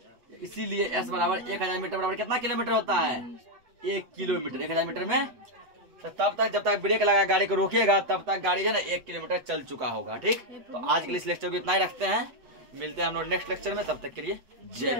इसीलिए एस बराबर 1000 मीटर बराबर कितना किलोमीटर होता है? 1 किलोमीटर। 1000 मीटर में तो तब तक जब तक ब्रेक लगा गाड़ी को रोकिएगा तब तक गाड़ी जो है ना 1 किलोमीटर चल चुका होगा। ठीक, तो आज के लिए इस लेक्चर को इतना ही रखते हैं। मिलते हैं हम लोग नेक्स्ट लेक्चर में। तब तक के लिए जय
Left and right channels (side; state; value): left; late; 8.0 ms